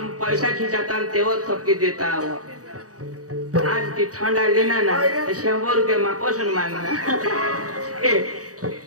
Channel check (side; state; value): left; late; 0.66 ms